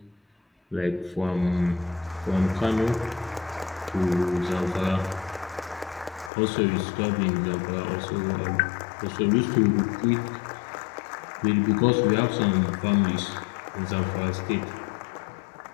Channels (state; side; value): drops out; right; at 6.3 s